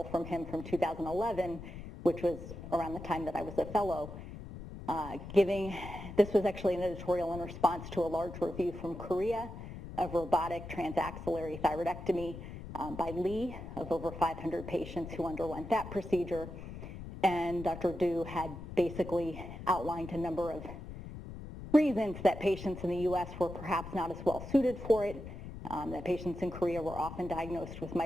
from him from 2011, which was around the time that I was a fellow. This was actually an editorial in response to a large review from Korea of robotic transaxillary thyroidectomy by Lee of over 500 patients who underwent that procedure. And Dr. Du had basically outlined a number of reasons that patients in the US were perhaps not as well suited for it, that patients in Korea were often diagnosed with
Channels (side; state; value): left; noise; rumble, 11 dB below the sound